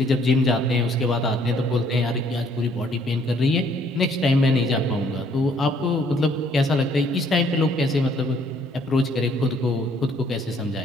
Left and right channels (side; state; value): both; normal; correlation 0.63